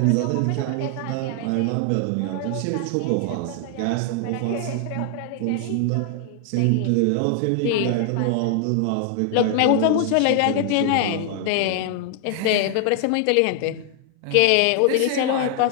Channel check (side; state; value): both; different; correlation 0.00